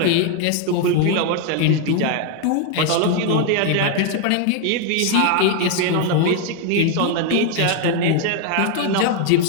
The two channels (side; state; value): both; different; correlation 0.01